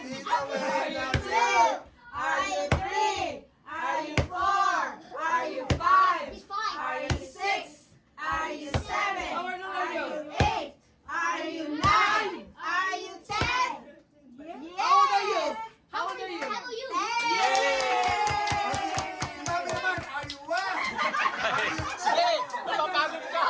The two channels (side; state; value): both; identical; correlation 1.00